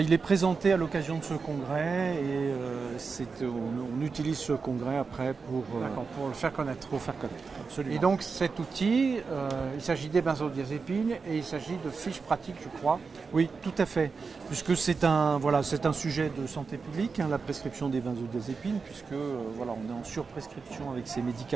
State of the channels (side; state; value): left; quieter; 4.9 dB